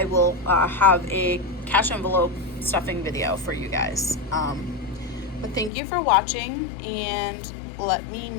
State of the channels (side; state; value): right; drops out; at 5.7 s